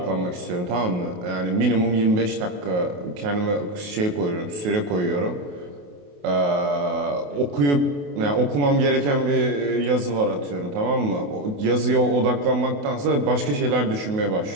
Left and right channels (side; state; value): left; late; 28 ms